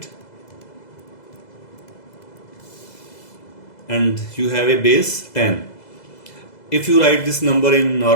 and you have a base 10. If you write this number in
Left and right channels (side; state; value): right; late; 2.0 ms